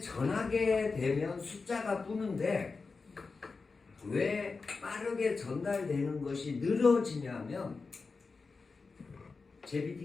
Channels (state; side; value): quieter; right; 4.4 dB